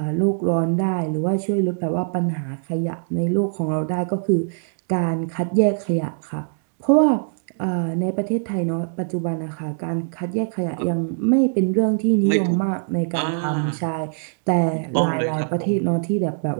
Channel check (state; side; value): silent; left; digital silence